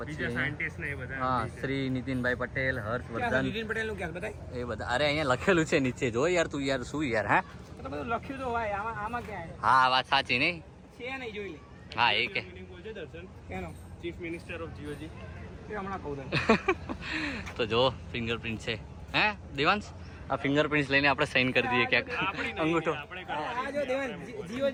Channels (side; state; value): both; identical; correlation 1.00